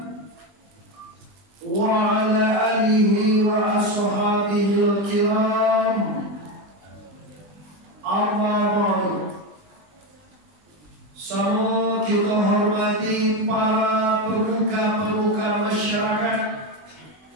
wa ala alihi wa ashabihil kiram. Amma ba'du. Semua kita hormati para pemuka-pemuka masyarakat,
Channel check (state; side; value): late; left; 20 ms